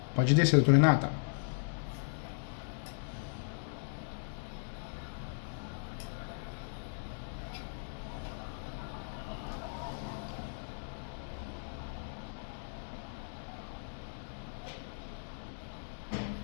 Pode descer, doutora Renata.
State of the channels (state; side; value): silent; right; digital silence